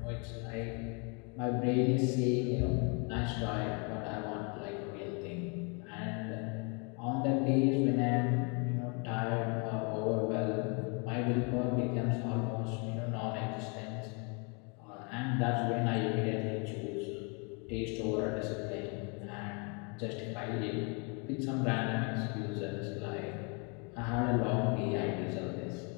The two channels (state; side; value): quieter; right; 34.6 dB